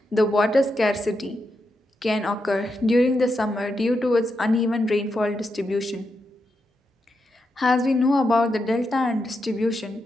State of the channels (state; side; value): normal; both; correlation 0.85